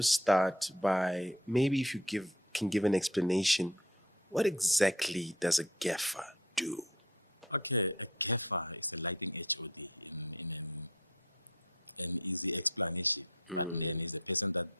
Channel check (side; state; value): both; normal; correlation 0.48